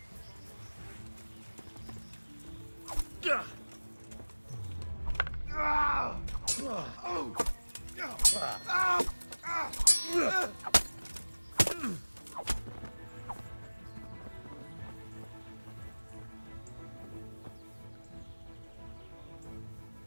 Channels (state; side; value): inverted; both; correlation -1.00